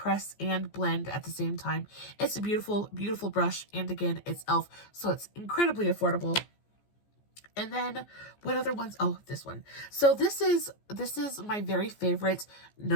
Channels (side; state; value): right; late; 14 ms